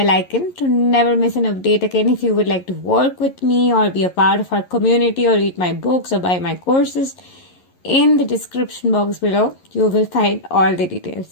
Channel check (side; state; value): right; late; 11 ms